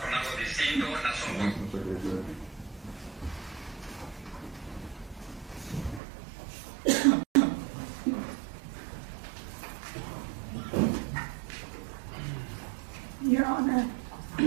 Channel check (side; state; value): left; drops out; at 6.0 s